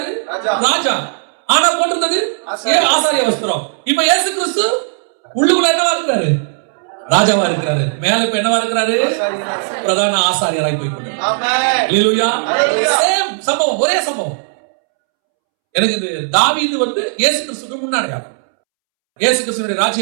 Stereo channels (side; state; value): left; silent; 69 dB below the other